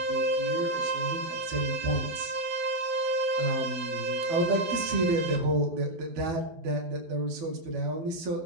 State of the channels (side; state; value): left; late; 12 ms